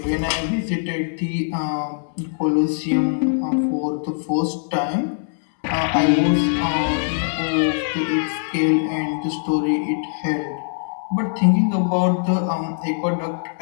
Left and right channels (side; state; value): right; silent; digital silence